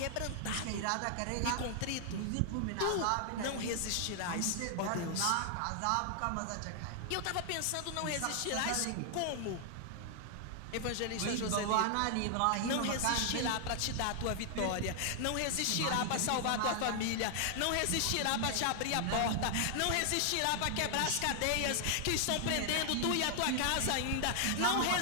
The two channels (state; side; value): different; both; correlation 0.00